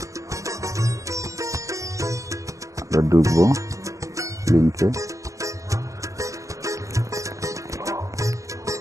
আমরা ঢুকবো লিঙ্কে।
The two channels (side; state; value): left; late; 0.16 ms